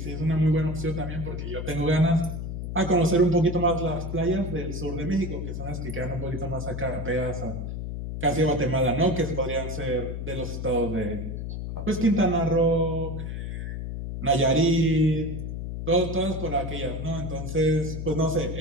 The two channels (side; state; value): left; noise; hum, 5 dB below the sound